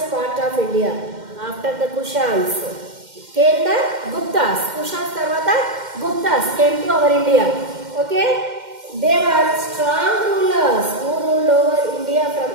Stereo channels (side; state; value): left; late; 2.1 ms